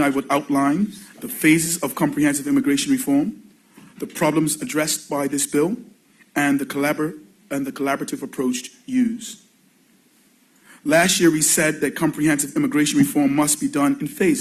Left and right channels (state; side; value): identical; both; correlation 1.00